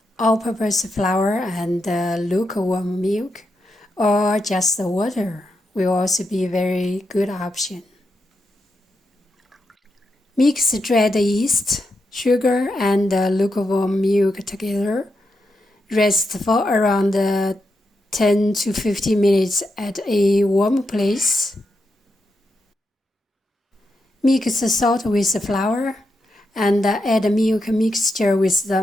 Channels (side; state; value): both; normal; correlation 0.85